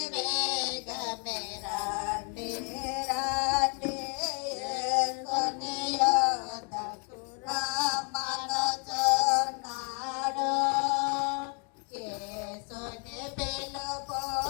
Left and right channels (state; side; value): quieter; right; 36.9 dB